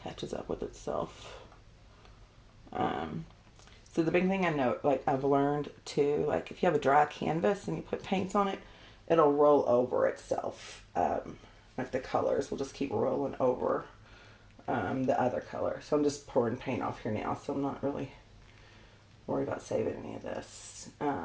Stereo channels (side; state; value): both; identical; correlation 1.00